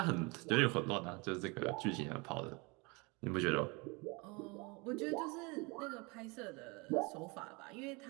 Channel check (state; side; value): quieter; left; 28.1 dB